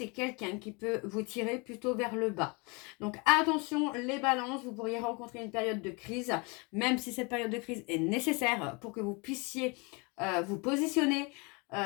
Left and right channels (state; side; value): quieter; right; 29.7 dB